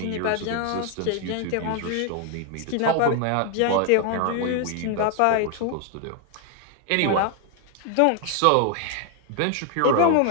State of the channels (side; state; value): both; different; correlation 0.00